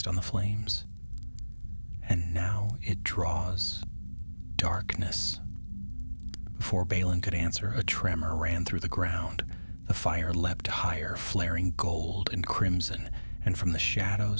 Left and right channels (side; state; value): both; inverted; correlation -1.00